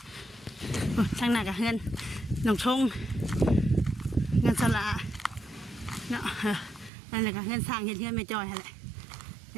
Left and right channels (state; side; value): drops out; left; at 6.9 s